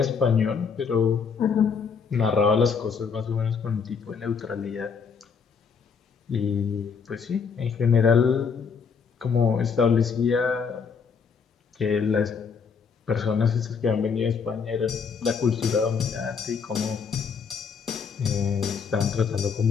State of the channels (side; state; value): right; quieter; 5.9 dB